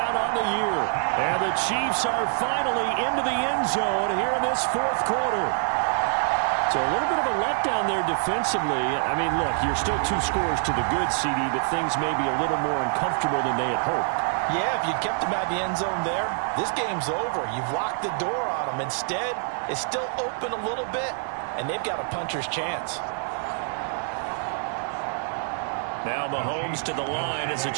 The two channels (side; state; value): left; silent; 61 dB below the other